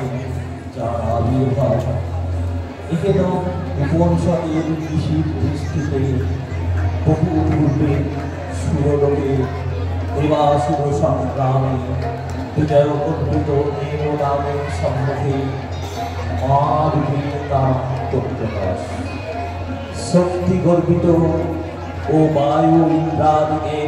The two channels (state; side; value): identical; both; correlation 1.00